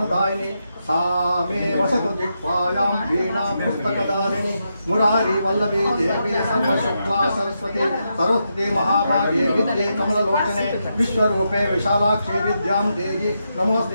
सा मे वसतु जिह्वायां वीणां पुस्तकदारिणी मुरारी वल्लभी देवी सर्वशुक्ला सरस्वती सर्वस्वती महाभागे विद्ये कमललोचने विश्वरूपे विशालाक्षी विद्यां देहि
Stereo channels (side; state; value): both; inverted; correlation -0.84